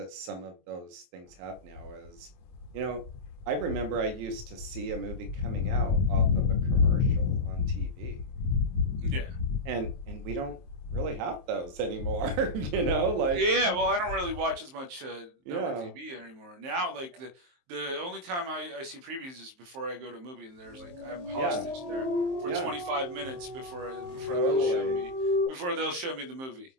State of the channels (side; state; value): left; late; 23 ms